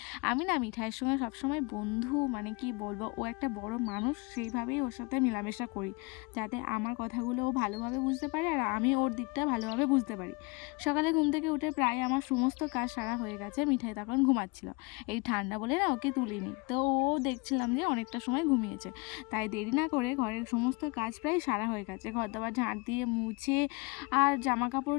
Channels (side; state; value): right; quieter; 26.9 dB